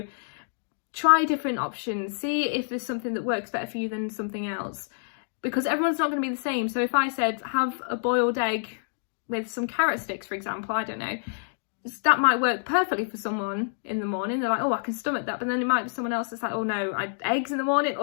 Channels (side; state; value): right; silent; digital silence